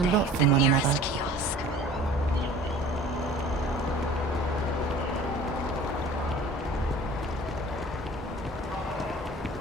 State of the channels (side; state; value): both; normal; correlation 0.45